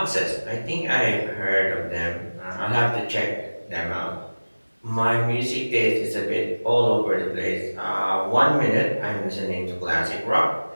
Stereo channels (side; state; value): both; inverted; correlation -1.00